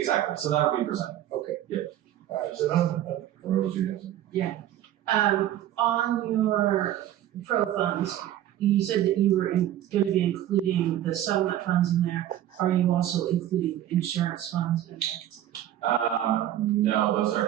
So that'll be presented. Okay. Yeah. So Where was you? On your pro funds, you said that you were going to be including the settlement funds in there. Are you also including insurance funds in there? No, those are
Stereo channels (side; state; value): left; quieter; 12.3 dB